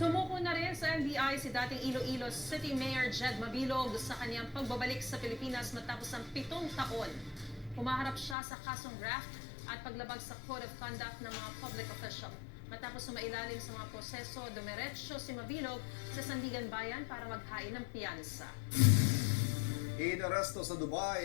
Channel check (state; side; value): drops out; right; at 8.3 s